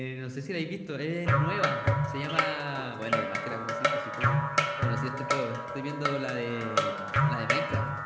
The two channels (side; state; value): both; identical; correlation 1.00